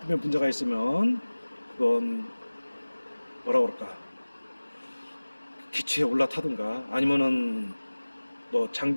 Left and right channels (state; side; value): inverted; both; correlation -1.00